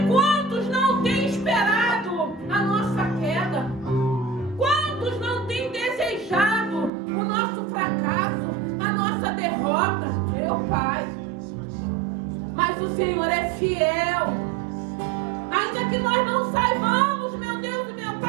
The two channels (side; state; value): left; drops out; at 6.9 s